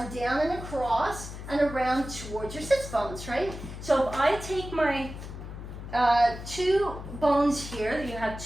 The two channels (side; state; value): left; noise; hum, 10 dB below the sound